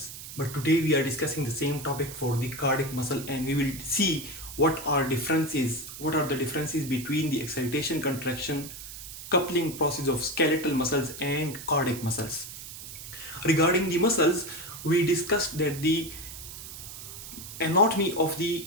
But today we are discussing the same topic for the cardiac muscle, and we will see what are the differences between the excitation contraction coupling process of skeletal muscles and cardiac muscles. Regarding the muscles, we discussed that the anatomy of the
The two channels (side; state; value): right; noise; hiss, 12 dB below the sound